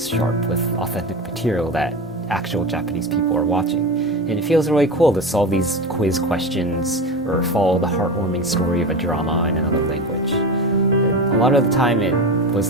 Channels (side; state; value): both; normal; correlation 0.25